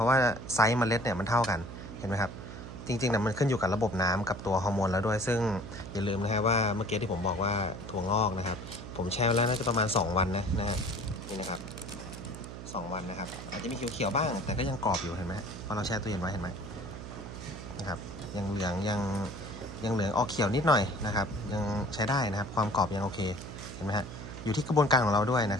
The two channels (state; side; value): noise; right; hum, 11 dB below the sound